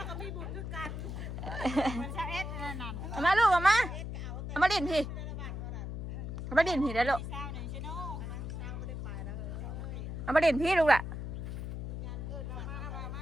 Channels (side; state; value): left; noise; hum, 5 dB below the sound